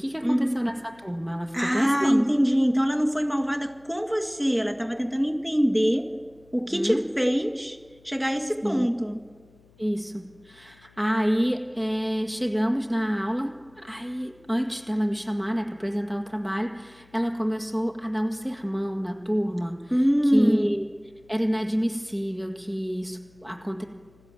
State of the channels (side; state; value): left; noise; hum, 29 dB below the sound